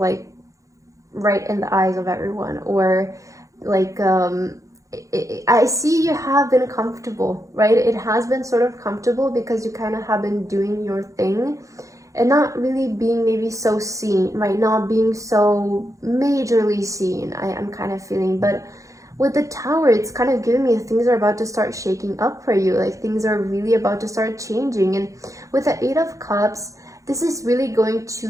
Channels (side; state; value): left; late; 0.16 ms